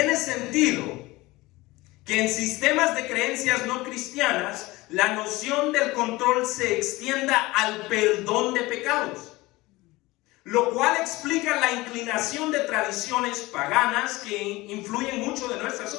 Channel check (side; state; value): right; quieter; 20.7 dB